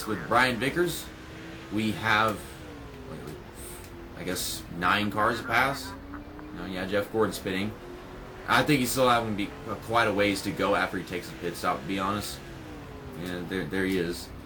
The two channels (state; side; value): identical; both; correlation 1.00